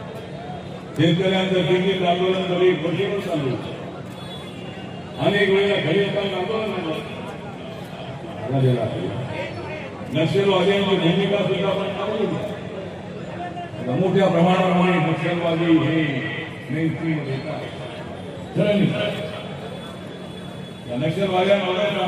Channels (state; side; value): identical; both; correlation 1.00